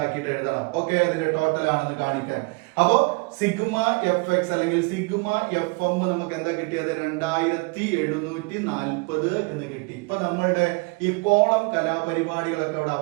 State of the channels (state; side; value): quieter; left; 29.3 dB